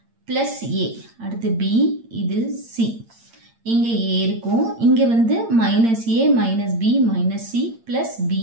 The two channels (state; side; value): late; left; 8.8 ms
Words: plus A, அடுத்து பி, இது சி. இங்கே ஏ இருக்கும். இங்கே வந்து minus A minus B minus C plus